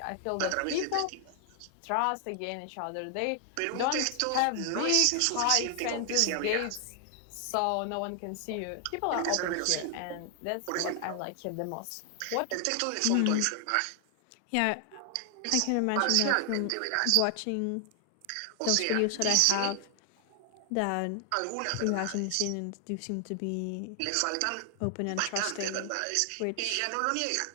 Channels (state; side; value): different; both; correlation 0.00